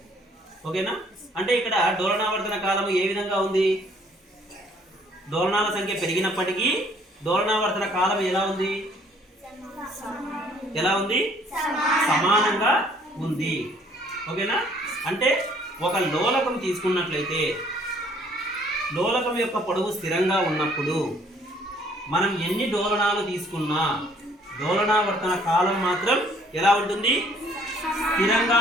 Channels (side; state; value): both; normal; correlation 0.61